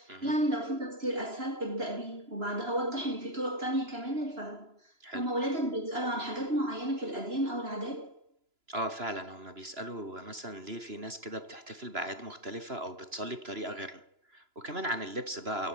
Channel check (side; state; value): left; late; 2.9 ms